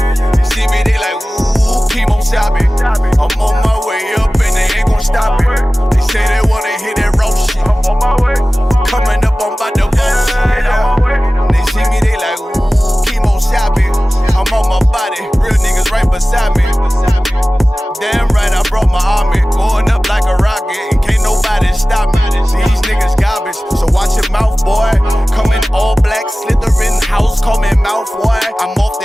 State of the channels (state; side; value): normal; both; correlation 0.97